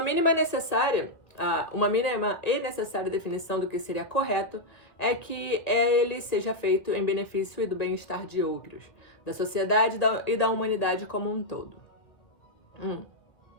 mínima e necessária definição do que seria correto é que ele seja feito em benefício e do bem-estar de outros, da sociedade e da humanidade como um todo.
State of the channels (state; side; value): late; right; 1.6 ms